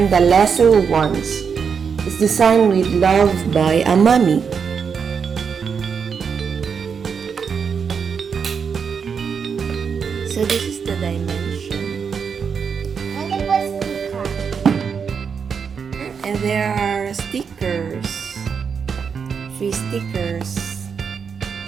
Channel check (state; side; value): quieter; left; 6.4 dB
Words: the lesser ones. It's designed with love by a mommy. So this is the dimension. And it was sticker. And there are stickers. Free stickers.